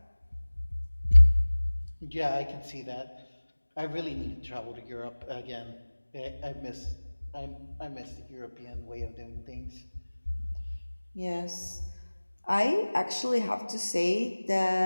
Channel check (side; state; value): both; inverted; correlation -1.00